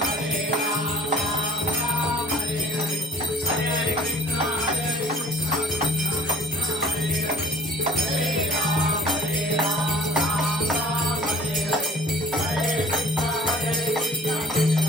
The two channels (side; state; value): both; normal; correlation 0.53